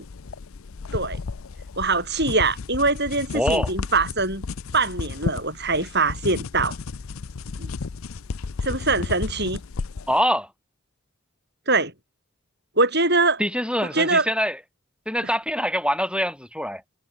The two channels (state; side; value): normal; both; correlation 0.15